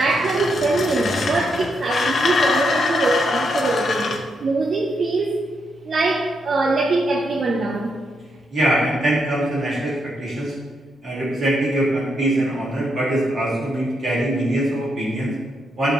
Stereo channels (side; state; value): both; normal; correlation 0.80